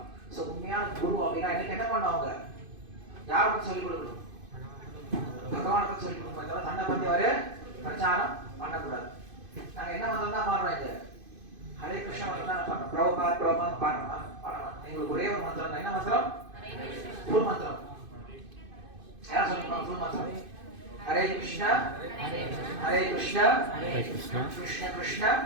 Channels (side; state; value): left; late; 2.5 ms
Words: சோ உண்மையான குரு அப்படின்னா எனக்கு என்ன பண்ணுவாங்க? யாரை பத்தி சொல்லிக் கொடுக்கணும்? பகவானை பத்தி சொல்லிக் கொடுக்கணும். தவிர தன்னை பத்தி அவரு பிரச்சாரம் பண்ணக்கூடாது. நாங்க என்ன மந்திரம் தான் பாடுறோம்? இது ஹரே கிருஷ்ண மந்திரம் தான் பாடுறோம். பிரபுபாத் பாடுறோம். எங்களுக்கு ஒரே ஒரு மந்திரம் தான். என்ன மந்திரம்? ஃபுல் மந்திரம். யார் சொல்லிருப்பாங்க ஃபுல் மந்திரம்? ஹரே கிருஷ்ணா ஹரே கிருஷ்ணா கிருஷ்ண கிருஷ்ண